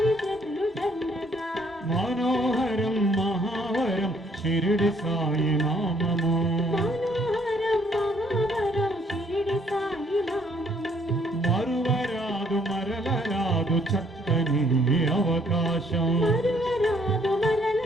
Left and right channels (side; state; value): both; normal; correlation 0.65